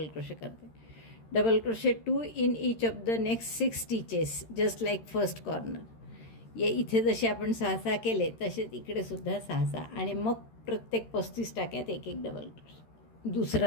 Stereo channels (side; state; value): right; late; 13 ms